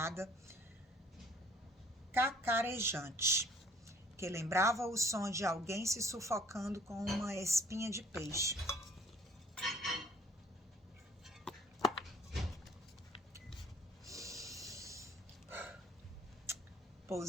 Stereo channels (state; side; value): normal; both; correlation 0.56